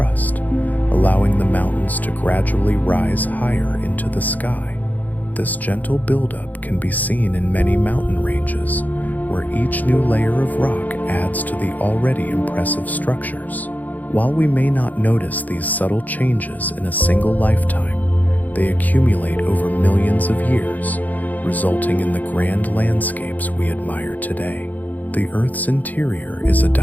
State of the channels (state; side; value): late; right; 0.081 ms